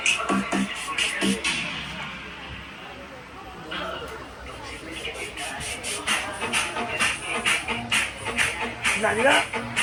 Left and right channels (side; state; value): both; identical; correlation 1.00